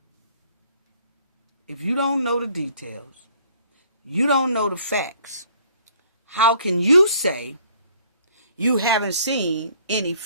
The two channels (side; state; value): both; inverted; correlation -0.60